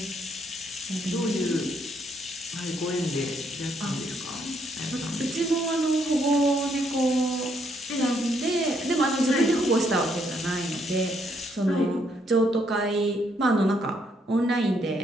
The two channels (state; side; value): normal; both; correlation 0.72